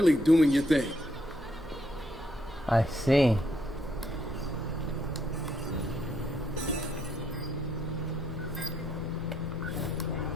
doing your thing. I see.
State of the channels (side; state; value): both; normal; correlation 0.74